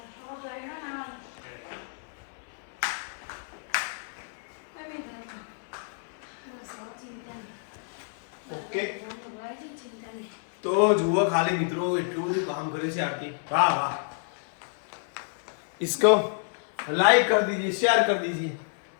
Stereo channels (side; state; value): right; silent; 58 dB below the other